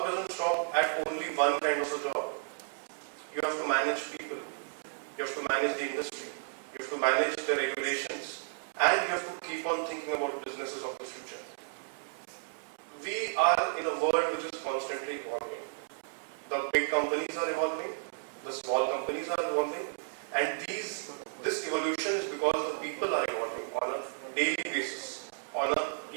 doesn't stop at only one kind of a job. You have to manage people. You have to manage the industry. You have to manage the regulations. And you have to keep on thinking about businesses of the future. We are in a world which is constantly evolving. The big companies are evolving. The small companies are evolving. And this evolution is because the people are evolving on a daily basis, on a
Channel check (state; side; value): silent; left; digital silence